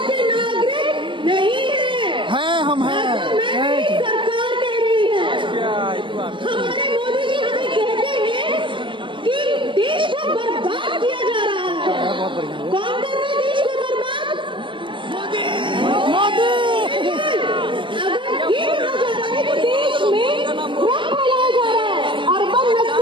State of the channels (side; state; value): left; late; 0.24 ms